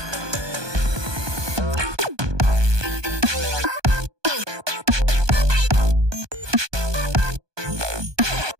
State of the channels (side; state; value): left; late; 1.2 ms